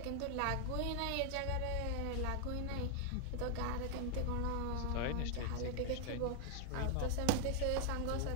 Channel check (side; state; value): both; different; correlation 0.00